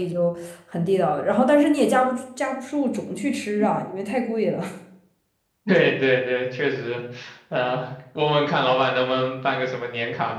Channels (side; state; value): both; identical; correlation 1.00